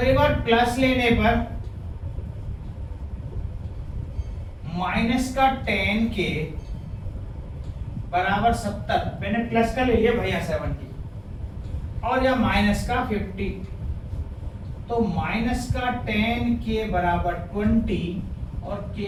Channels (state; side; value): identical; both; correlation 1.00